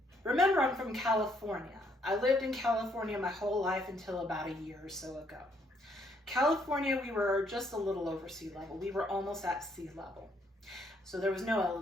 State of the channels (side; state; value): both; normal; correlation 0.70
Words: Remember, I'm from California. I lived in California my whole life until about a year or so ago. California, we were just a little over sea level. We were almost at sea level. So there was no